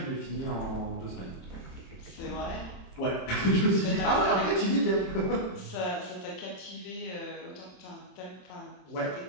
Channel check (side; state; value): right; late; 27 ms